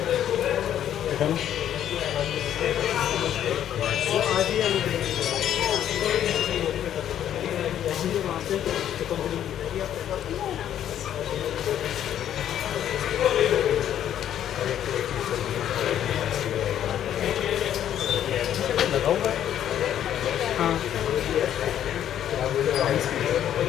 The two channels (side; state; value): right; quieter; 10.6 dB